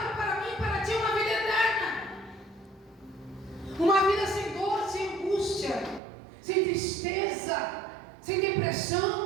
para mim e para ti é uma vida eterna. Uma vida sem dor, sem angústia, sem tristeza, sem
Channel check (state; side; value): drops out; left; at 6.0 s